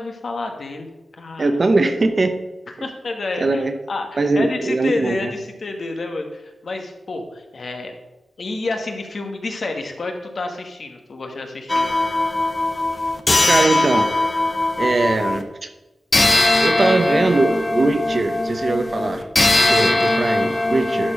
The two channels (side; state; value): both; normal; correlation 0.94